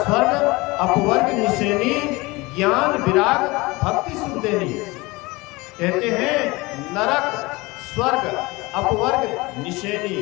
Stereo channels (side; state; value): right; quieter; 22.9 dB